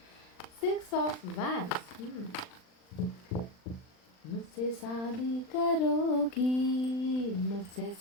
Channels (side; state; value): right; late; 39 ms